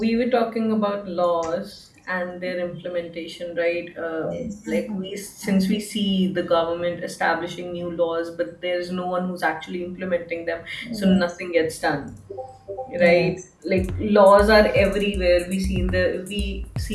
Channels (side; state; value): both; identical; correlation 1.00